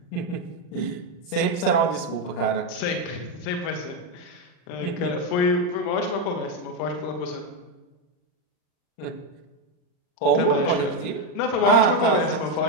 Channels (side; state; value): right; late; 40 ms